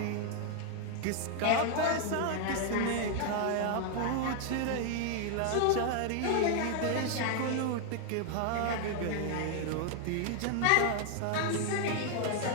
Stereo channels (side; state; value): both; different; correlation 0.00